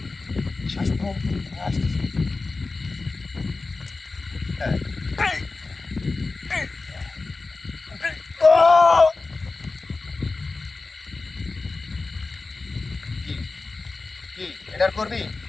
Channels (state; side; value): quieter; right; 3.7 dB